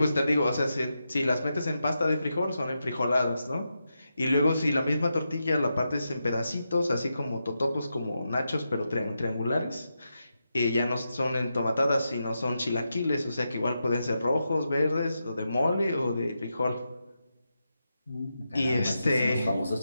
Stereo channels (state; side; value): inverted; both; correlation -0.87